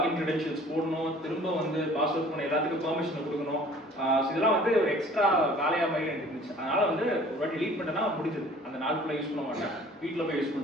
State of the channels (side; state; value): both; normal; correlation 0.50